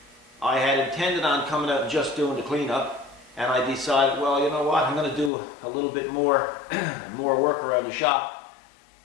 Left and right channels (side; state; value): right; drops out; at 5.3 s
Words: I had intended on coming out and just doing the cleanup, and I decided, well, you know what, I'm going to do a little bit more, more work around the shop,